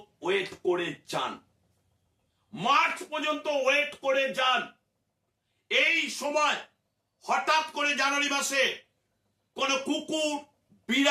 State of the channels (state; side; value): identical; both; correlation 1.00